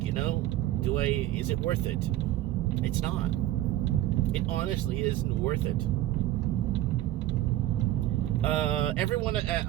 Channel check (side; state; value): left; quieter; 14.5 dB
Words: you know? Is it worth it? It's not. It honestly isn't worth it.